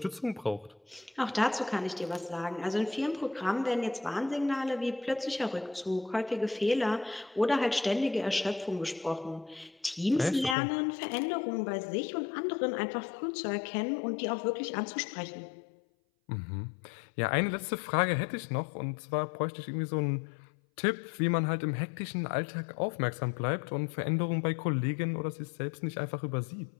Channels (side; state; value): right; drops out; at 10.6 s